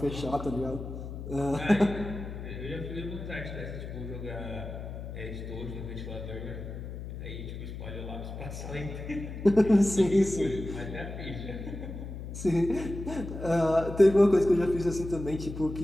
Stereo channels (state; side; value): noise; left; hum, 9 dB below the sound